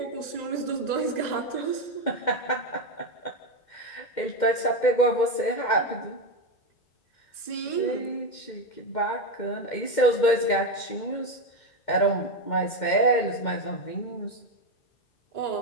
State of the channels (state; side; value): late; right; 2.1 ms